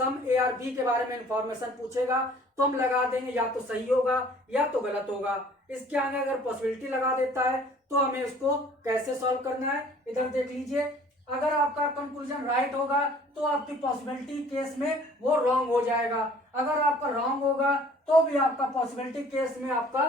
ए आर बी के बारे में इंफॉर्मेशन पूछेगा तो हम लगा देंगे या तो सही होगा या तो गलत होगा। इसके आगे अगर पॉसिबिलिटी लगा देता है तो हमें उसको कैसे सॉल्व करना है इधर देख लीजिए। अगर आपका कंक्लूजन राइट होगा तो आपकी पॉसिबिलिटी केस में वो रॉन्ग हो जाएगा। अगर आपका रॉन्ग होगा तो भी आपका पॉसिबिलिटी केस में आपका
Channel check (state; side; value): normal; both; correlation 0.53